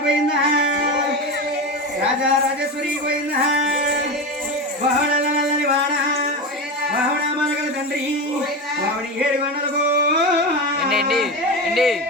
గోవింద రాజా రాజేశ్వరి గోవింద బహుళలని వాడ బహుళ మనగల తండ్రి బావని 7 గంటలకు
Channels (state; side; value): normal; both; correlation 0.21